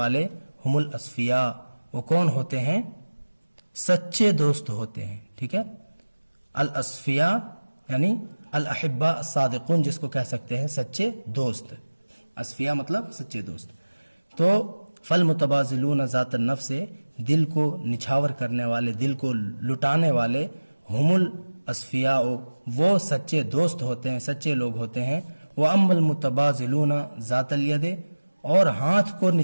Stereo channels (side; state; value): both; inverted; correlation -1.00